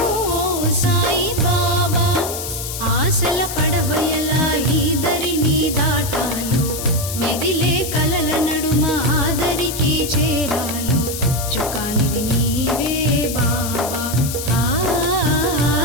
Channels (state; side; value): noise; left; hiss, 7 dB below the sound